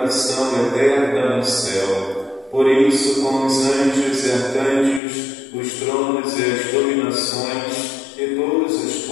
eterna no céu. Por isso, com os anjos e arcanjos, os tronos e as dominações e todos os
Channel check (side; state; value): right; drops out; at 5.0 s